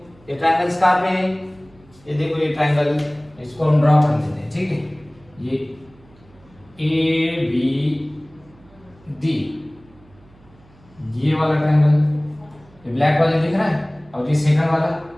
ये ट्रायंगल्स कहां पे है, ये देखो ये ट्रायंगल, इसको हम ड्रॉ कर लेते हैं। ठीक है, ये ए बी डी, ये वाला ट्रायंगल, ये ब्लैक वाला दिख रहा है, और ये सेकंड वाला,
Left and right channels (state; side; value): noise; right; hum, 28 dB below the sound